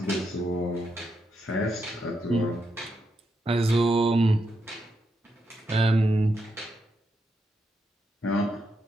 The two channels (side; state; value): both; normal; correlation 0.82